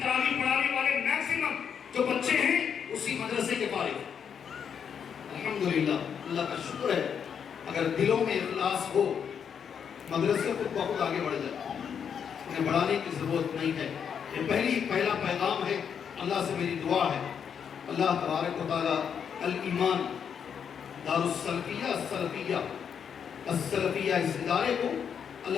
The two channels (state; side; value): quieter; right; 7.5 dB